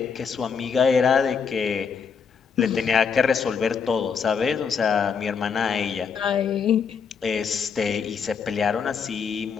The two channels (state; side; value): quieter; right; 6.2 dB